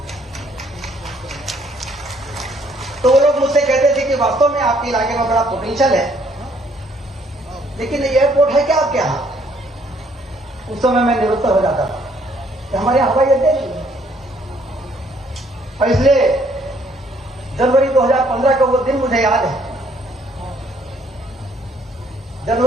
तो वो लोग मुझसे कहते थे कि वास्तव में आपके इलाके में बड़ा पोटेंशियल है, लेकिन एयरपोर्ट है क्या आपके यहाँ? उस समय मैं निरुत्तर हो जाता था कि हमारे यहाँ हवाई अड्डे नहीं है। और इसलिए जनवरी 2015 का वो दिन मुझे याद है।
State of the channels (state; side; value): normal; both; correlation 0.65